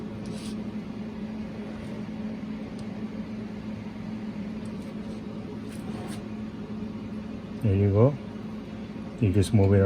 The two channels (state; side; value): identical; both; correlation 1.00